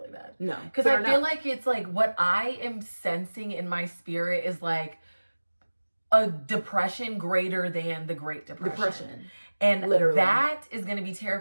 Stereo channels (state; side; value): inverted; both; correlation -1.00